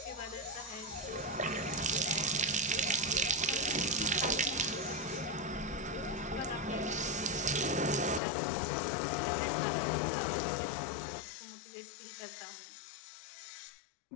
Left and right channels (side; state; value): right; drops out; at 8.2 s